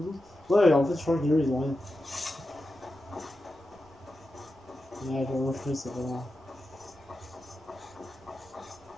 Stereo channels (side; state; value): both; normal; correlation 0.91